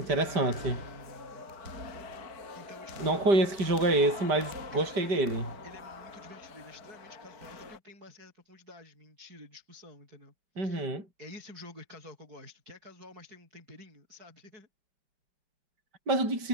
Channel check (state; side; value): late; left; 5.1 ms